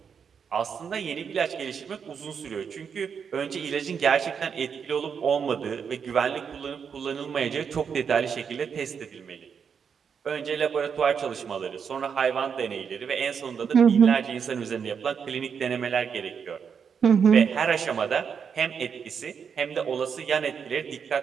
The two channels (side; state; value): left; quieter; 6.8 dB